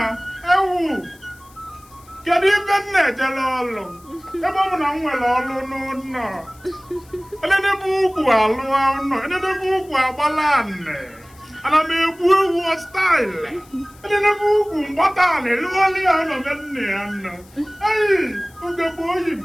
Ewu. Kedu ibe nne ejele ọlụ? Ebe ọ bụ na m nwere ọlụ n'ụlọ. Enedebe ukwu alụ ụlọ. Enedebe ukwu agbala nne. Ana m egbu ewu style. Enedebe ukwu mgbata ala elughọli ya nọ be nne ya nọ. Hey, ugegbe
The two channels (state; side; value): noise; left; hiss, 27 dB below the sound